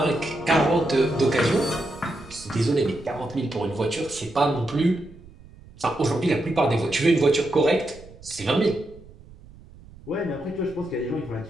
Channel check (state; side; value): noise; right; rumble, 21 dB below the sound